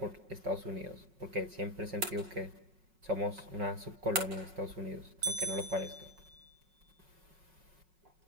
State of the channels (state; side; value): late; left; 5.4 ms